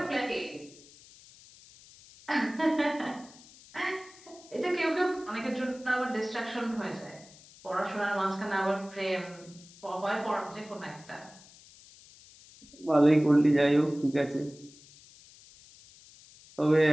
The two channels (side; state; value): left; noise; hiss, 23 dB below the sound